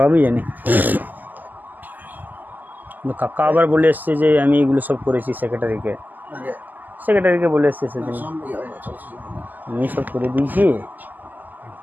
জানি। কাকা আবার বলে এসছে যে আমি এগুলো সব করেছি সেক্রেটারিকে বলে এসছে সেদিন, আমি সব করে দিয়েছি,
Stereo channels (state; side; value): late; left; 0.084 ms